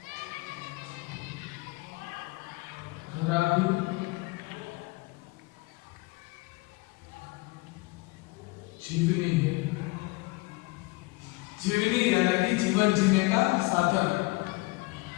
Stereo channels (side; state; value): right; quieter; 23.8 dB